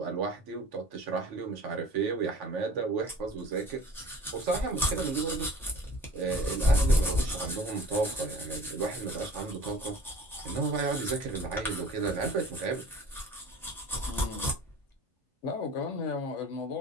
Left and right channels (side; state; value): both; normal; correlation 0.45